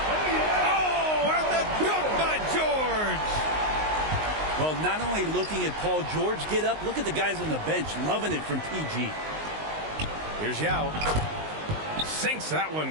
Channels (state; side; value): late; left; 19 ms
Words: Oh, and the dunk by George. Well, not only looking at Paul George get up, look at the guys on the bench loving it from PG. Here's Yao. Sinks that